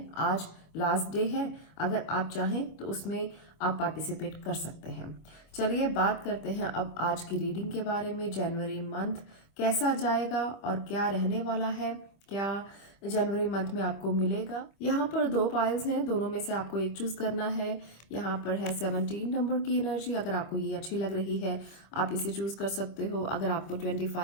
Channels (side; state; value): right; late; 25 ms